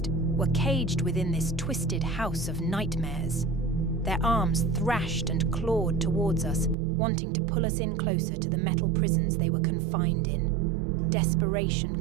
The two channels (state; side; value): drops out; left; at 6.8 s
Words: were caged within this twisted house of nightmares. Their arms thrashed and clawed towards us, wanting to pull us in closer to the metal prisons they were confined in. Desperation